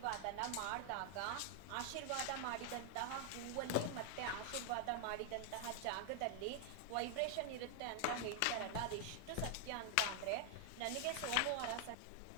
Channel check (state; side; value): different; both; correlation 0.00